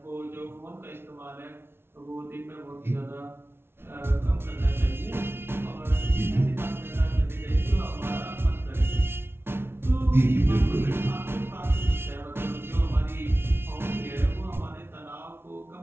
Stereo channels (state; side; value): late; left; 0.12 ms